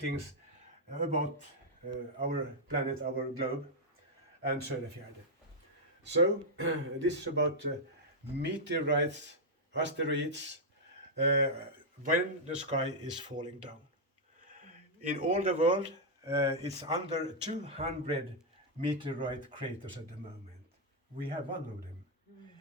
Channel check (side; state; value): both; normal; correlation -0.04